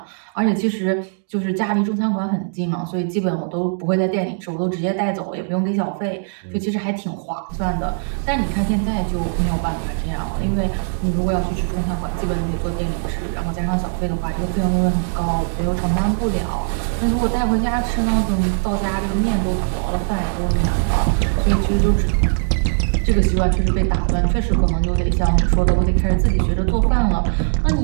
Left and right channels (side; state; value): left; silent; digital silence